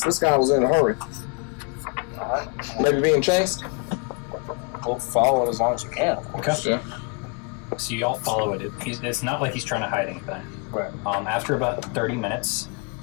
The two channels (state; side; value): quieter; right; 34.6 dB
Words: This guy was in a hurry. Alright. Maybe being chased? We'll follow it as long as you can. Okay. Yeah. So you all follow it. It's not like he's trying to hide anything. Right. After about 30 minutes,